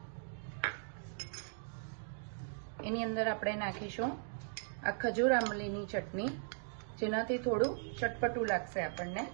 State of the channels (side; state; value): left; silent; digital silence